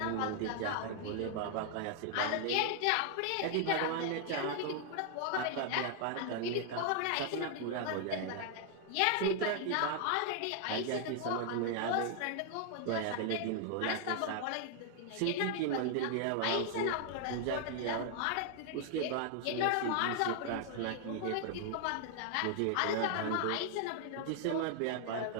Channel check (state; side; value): different; both; correlation 0.00